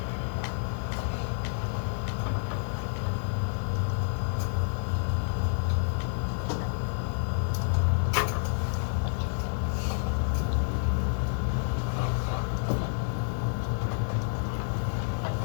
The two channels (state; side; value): silent; right; digital silence